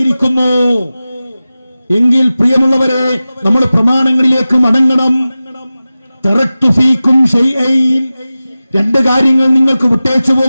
എങ്കിൽ പ്രിയമുള്ളവരെ, നമ്മൾ പ്രമാണങ്ങളിലേക്ക് മടങ്ങണം. തറക്തു ഫീക്കും ശൈഅൻ, 2 കാര്യങ്ങൾ നിങ്ങൾക്ക് വിട്ടേച്ചു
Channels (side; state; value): both; inverted; correlation -0.96